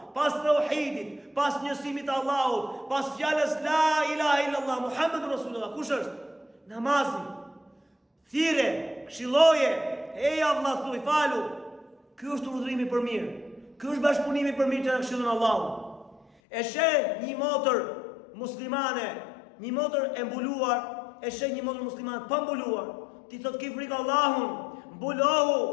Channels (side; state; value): right; drops out; at 16.2 s